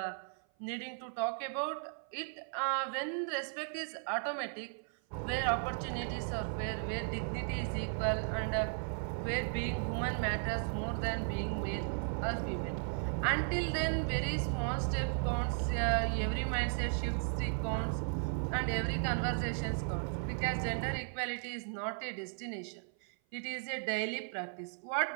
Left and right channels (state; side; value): silent; left; 54 dB below the other